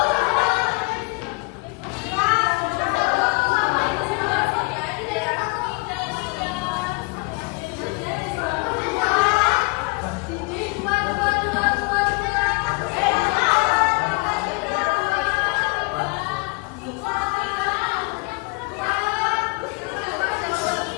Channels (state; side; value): quieter; right; 30.1 dB